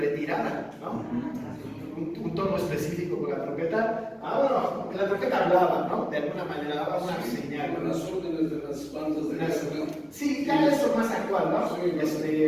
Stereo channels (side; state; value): both; identical; correlation 1.00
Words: ¿no? Un tono específico con la trompeta. Bueno, la trompeta hablaba, ¿no? De alguna manera daba una señal. Con las órdenes de las bandas de guerra. Sí, ya esto es más actual, ¿no?